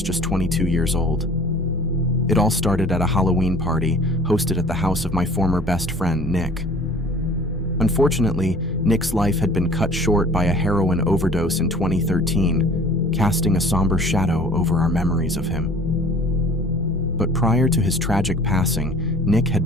just 22 years old. It all started at a Halloween party hosted at the house of my former best friend, Nick. Unfortunately, Nick's life had been cut short by a heroin overdose in 2013, casting a somber shadow over our memories of him. But prior to his tragic passing, Nick had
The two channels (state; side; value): normal; both; correlation 0.48